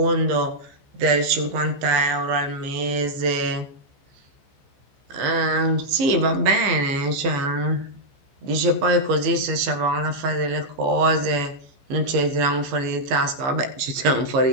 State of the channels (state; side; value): late; left; 15 ms